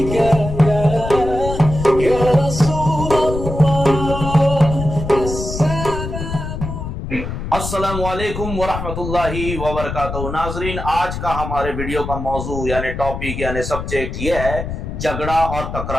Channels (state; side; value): noise; left; rumble, 6 dB below the sound